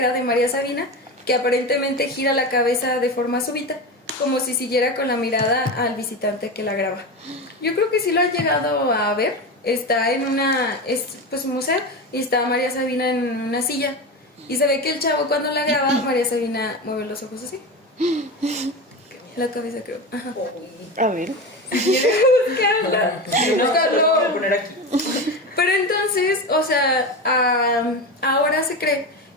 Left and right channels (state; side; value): normal; both; correlation 0.22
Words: de María Sabina que aparentemente gira la cabeza de forma súbita, como si siguiera con la mirada al visitante que la graba. Yo creo que sí lo han llegado a ver. Está en un museo y está María Sabina en una silla. Y se ve que el chavo cuando la graba, María Sabina mueve los ojos así. La cabeza, creo. Ajá. A ver. Lo voy a poner aquí. Pero entonces, o sea, ahora se cree